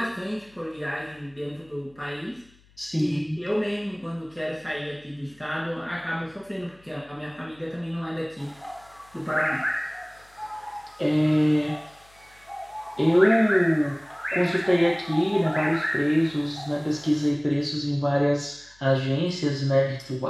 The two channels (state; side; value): noise; left; hum, 29 dB below the sound